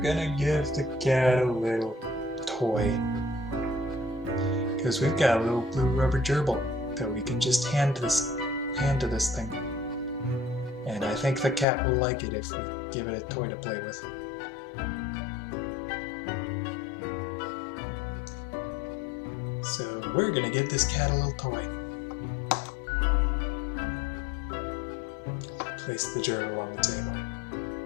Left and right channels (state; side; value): drops out; right; at 11.7 s